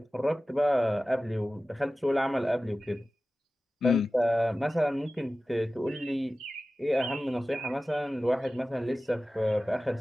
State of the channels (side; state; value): both; normal; correlation 0.96